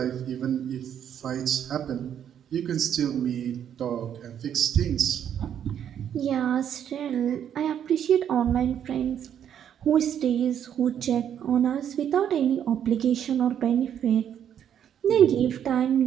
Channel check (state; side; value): quieter; left; 9.3 dB